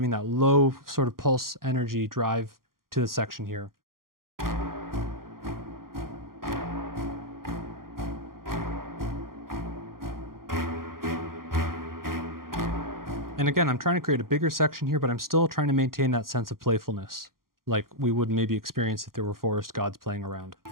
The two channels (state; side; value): late; left; 0.92 ms